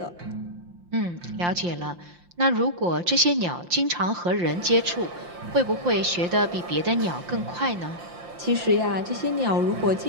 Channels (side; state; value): left; late; 5.7 ms